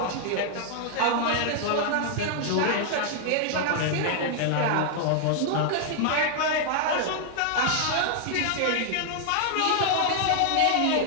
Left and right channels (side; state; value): both; different; correlation 0.00